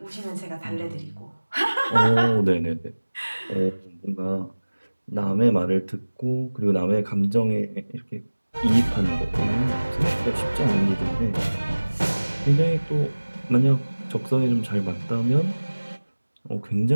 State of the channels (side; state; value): both; inverted; correlation -1.00